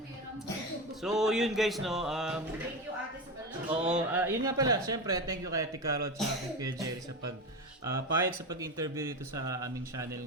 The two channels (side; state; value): both; normal; correlation 0.21